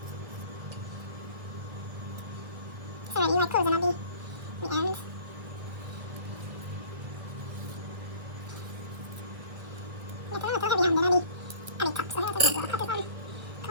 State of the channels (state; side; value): late; left; 1.5 ms